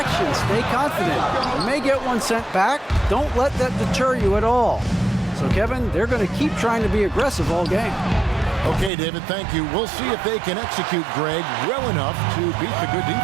stay confident. You may get one sent back. Don't let that deter you at all. So, Kevin, they're going to keep trying to be aggressive all game. Okay, David, thank you. We'll see if they can execute Greg well enough to beat the good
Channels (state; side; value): drops out; left; at 8.9 s